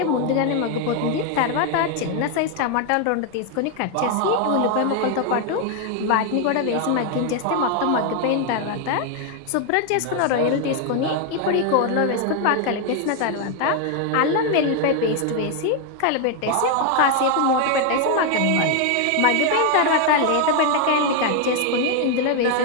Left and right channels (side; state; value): both; different; correlation 0.01